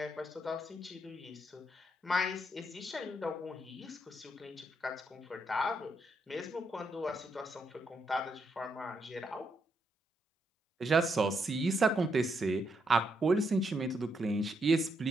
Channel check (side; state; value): both; normal; correlation 0.78